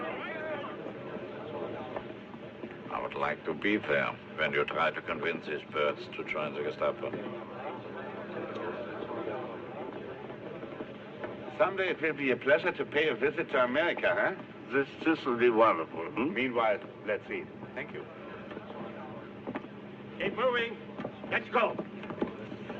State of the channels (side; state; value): both; identical; correlation 1.00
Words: I would like to be there when you try to convince these birds to join the Gestapo. Someday it will be a pleasure to pay a visit to America, huh? This will be wonderful. Meanwhile, let's eat. Thank you. Keep moving. Let's go.